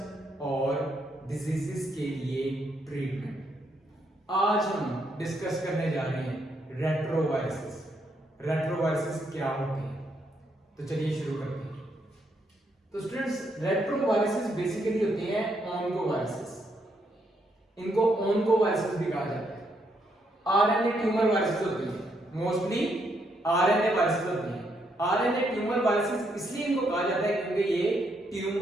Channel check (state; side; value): normal; both; correlation 0.76